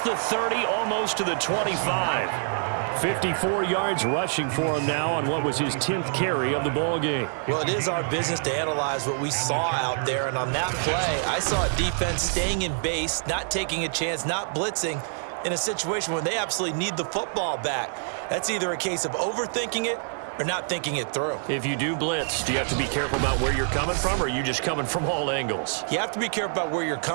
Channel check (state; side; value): silent; left; 61 dB below the other